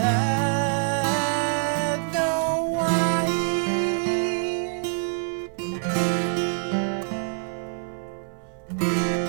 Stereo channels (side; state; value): left; silent; 58 dB below the other